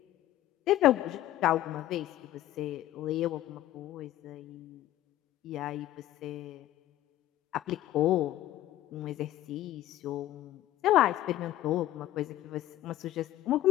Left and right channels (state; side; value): quieter; right; 14.0 dB